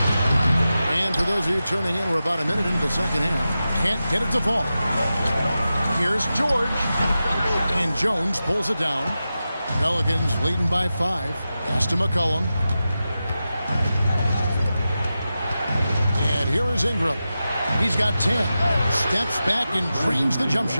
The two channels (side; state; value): both; inverted; correlation -0.92